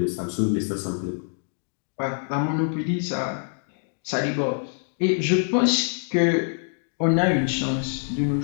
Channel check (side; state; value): right; silent; digital silence